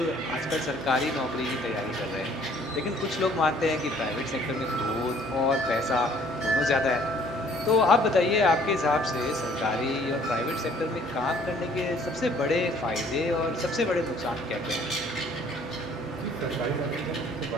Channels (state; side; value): normal; both; correlation 0.58